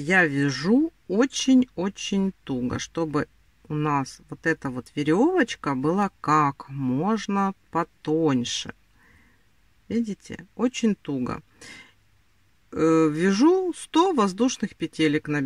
я вяжу очень-очень туго, чтобы у нас вот эта вот веревочка была как можно потоньше. Видите, очень туго. Вяжу 100 воздушных петелек,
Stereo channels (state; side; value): identical; both; correlation 1.00